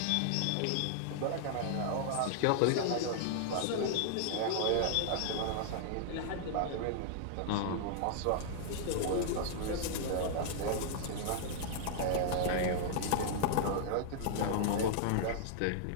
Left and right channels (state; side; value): different; both; correlation -0.01